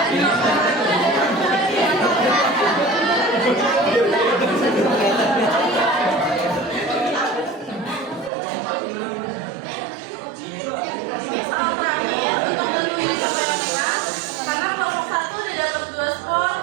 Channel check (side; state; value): left; drops out; at 8.3 s